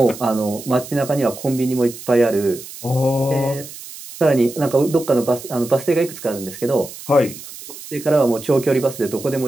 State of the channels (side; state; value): right; noise; hiss, 14 dB below the sound